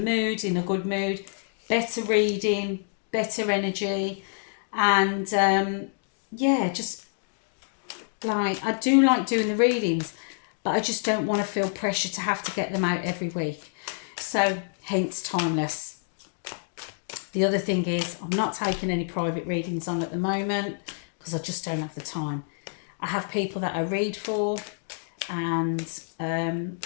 in a good mood, better reading, better energy, and yeah, just like I do like doing the readings, but I just don't want to feel pressure to have to get them out every week. So hence timeless. The other thing is I'm not taking any private readings on at the moment because I just don't have the time. I have people that I read for, and I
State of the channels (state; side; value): silent; right; digital silence